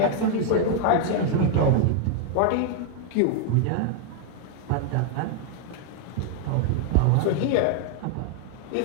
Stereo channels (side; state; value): both; different; correlation 0.00